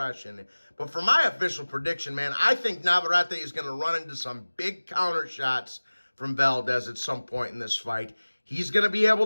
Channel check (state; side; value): inverted; both; correlation -1.00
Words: But for my official prediction, man, I think Navarrete is going to run into some big counter shots from Valdez at some point in this fight. He's going to be able